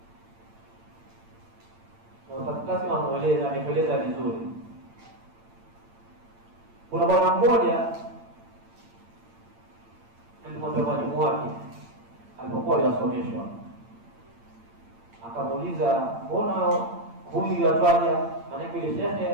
Na utakasi ameeleza vizuri. Kuna bwana mmoja alimwambia mwalimu wake alipokuwa yasomeshwa, akamuuliza, mbona huyu yatwaja? Maana ile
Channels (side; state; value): left; late; 8.8 ms